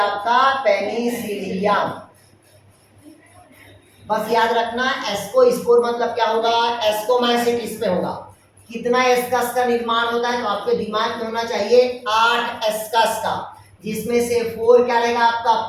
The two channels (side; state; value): both; identical; correlation 1.00